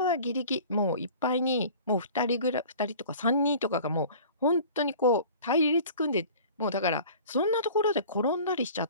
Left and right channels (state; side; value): inverted; both; correlation -0.44